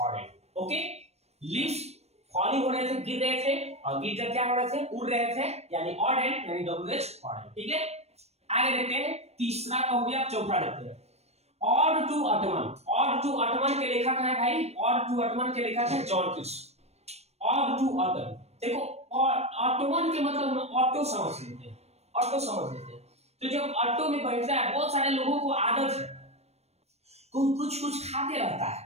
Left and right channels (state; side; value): late; left; 0.31 ms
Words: Okay, leaves falling हो रहे थे, गिर रहे थे और गिर कर क्या हो रहे थे? उड़ रहे थे यानी ऑडेन यानी WH ऑडेन। ठीक है, आगे देखते हैं। तीसरा का हो गया, चौथा देखते हैं। Ode to autumn. Ode to autumn के लेखक है भाई, ऑड टू अटमन के लेखक है जॉन कीट्स। ऑड टू अटमन, देखो ऑटोमन के मतलब ऑटो समझ लेते हैं, ऑटो समझ लेते हैं। तो जब ऑटो में बैठता है, बहुत सारे लोगों को आदत है कुछ खाते रहता